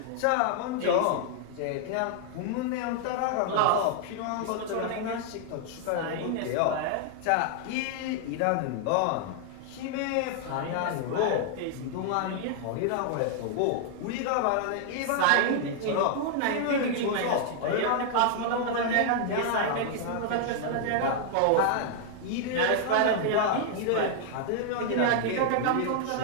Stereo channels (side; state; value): both; different; correlation 0.00